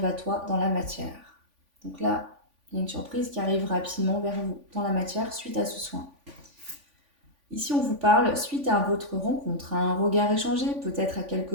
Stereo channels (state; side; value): late; left; 3.5 ms